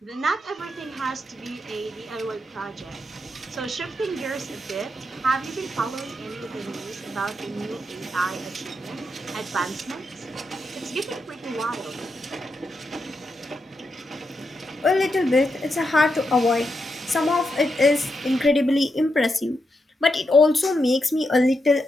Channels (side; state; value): both; normal; correlation 0.84